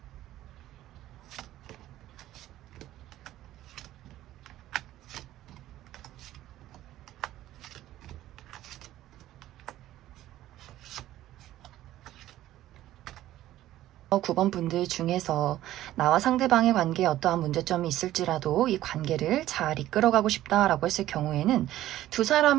9번 분들 중에서 나와 상대방의 관계에 어떠한 문제점이 있을지라도 이 관계를 잘 이끌어가고 싶다라고 했을 경우에는 두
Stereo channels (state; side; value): quieter; left; 14.1 dB